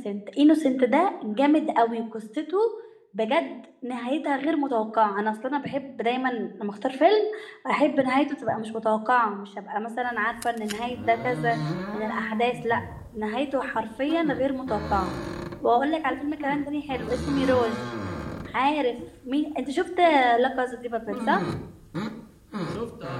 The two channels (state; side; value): identical; both; correlation 1.00